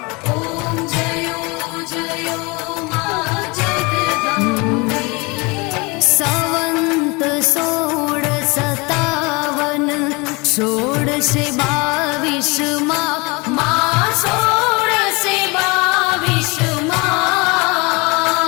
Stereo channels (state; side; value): quieter; right; 27.1 dB